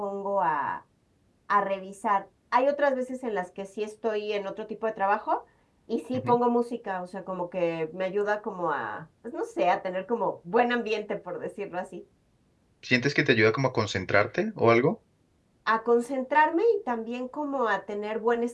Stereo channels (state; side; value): identical; both; correlation 1.00